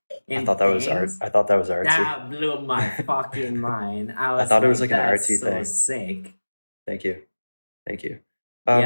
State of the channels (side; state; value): both; inverted; correlation -1.00